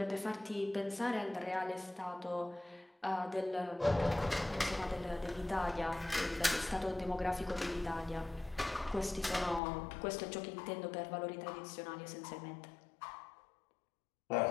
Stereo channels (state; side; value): drops out; right; at 9.6 s